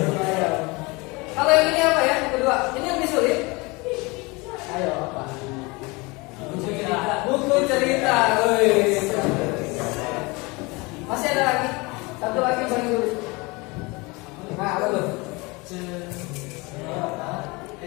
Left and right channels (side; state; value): right; quieter; 25.6 dB